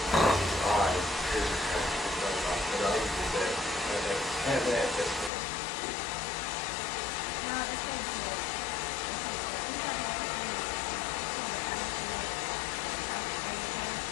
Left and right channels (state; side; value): drops out; right; at 5.3 s